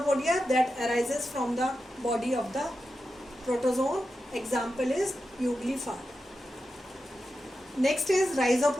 that arises from the body of the protozoan. Example is Euglifar. Next is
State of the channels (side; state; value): both; normal; correlation 0.90